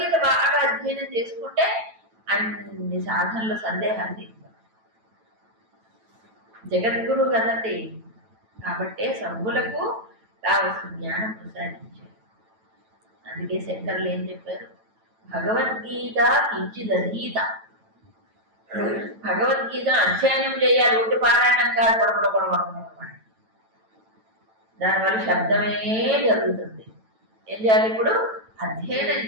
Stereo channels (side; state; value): left; late; 9.1 ms